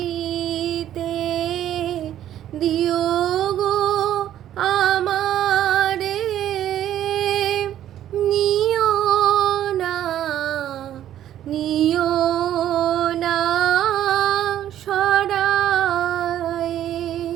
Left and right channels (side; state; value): left; quieter; 11.6 dB